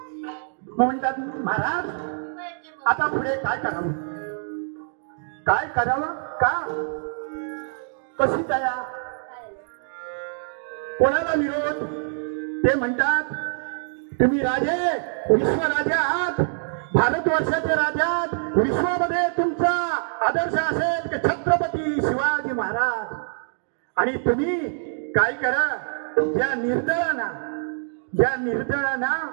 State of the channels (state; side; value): silent; left; digital silence